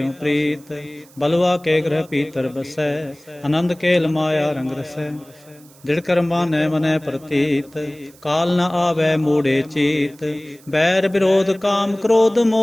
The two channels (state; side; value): noise; right; hiss, 26 dB below the sound